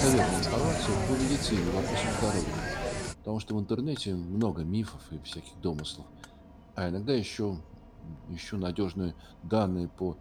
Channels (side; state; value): both; identical; correlation 1.00